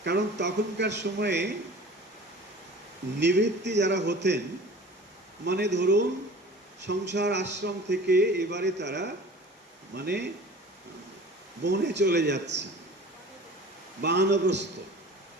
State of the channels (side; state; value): both; normal; correlation 0.42